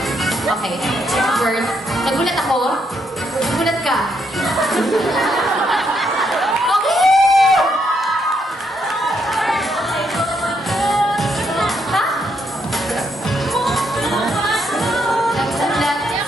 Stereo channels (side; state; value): both; normal; correlation 0.76